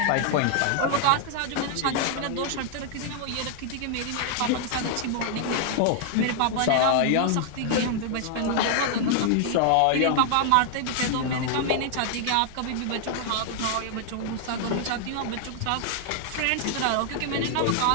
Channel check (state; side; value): different; both; correlation 0.00